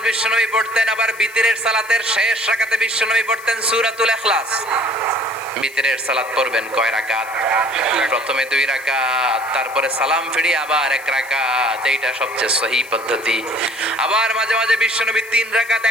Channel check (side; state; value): left; noise; hiss, 20 dB below the sound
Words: বিশ্বনবী পড়তেন। আবার বিতরের সালাতের শেষ রাকাতে বিশ্বনবী পড়তেন সূরাতুল ইখলাস। বিতরের সালাত পড়বেন কয় রাকাত? প্রথমে 2 রাকাত, তারপরে সালাম ফিরিয়ে আবার 1 রাকাত। এইটা সবচেয়ে সহি পদ্ধতি। আবার মাঝে মাঝে বিশ্বনবী 3 রাকাত